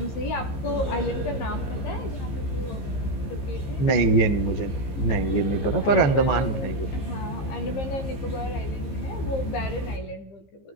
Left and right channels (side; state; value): right; late; 15 ms